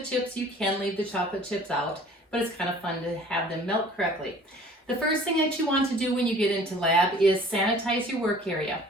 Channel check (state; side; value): normal; both; correlation 0.50